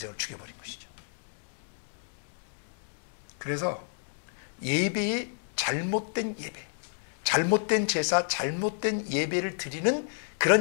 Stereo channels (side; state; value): right; silent; 58 dB below the other